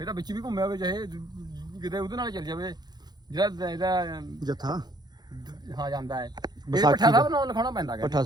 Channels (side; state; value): left; late; 0.20 ms